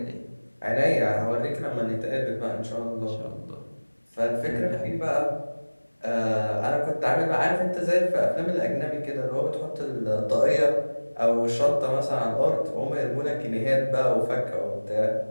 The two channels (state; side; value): inverted; both; correlation -1.00